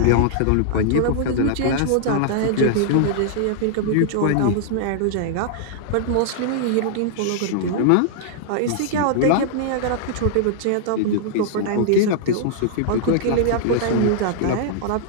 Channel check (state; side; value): different; both; correlation -0.01